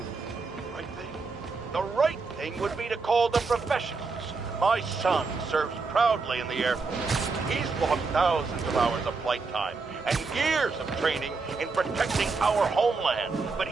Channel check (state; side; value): quieter; left; 4.2 dB